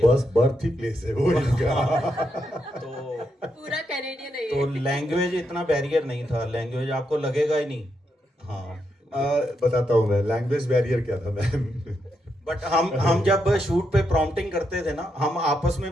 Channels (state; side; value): normal; both; correlation 0.82